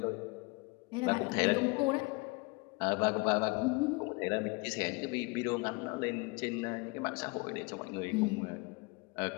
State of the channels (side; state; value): right; quieter; 27.2 dB